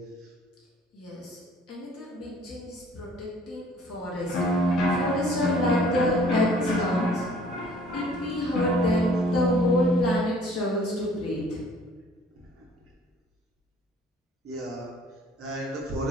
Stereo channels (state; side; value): normal; both; correlation 0.55